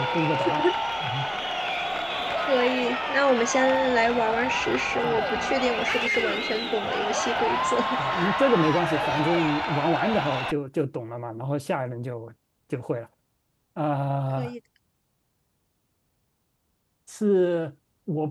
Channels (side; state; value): both; identical; correlation 1.00